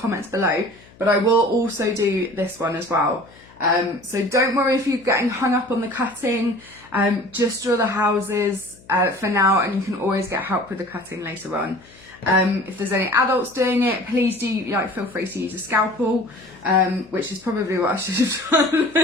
below, but I will also do this one as well. So don't worry if you're getting hung up on the cutting, just draw the houses for now, and you can always get help with the cutting later on. If there's any adults doing it, please do feel free to use a scalpel, which is probably what I should have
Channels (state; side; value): noise; left; hum, 25 dB below the sound